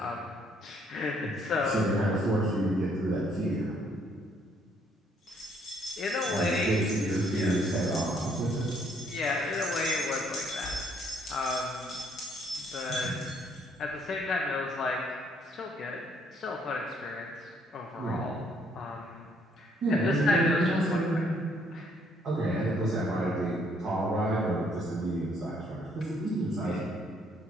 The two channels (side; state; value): both; normal; correlation 0.67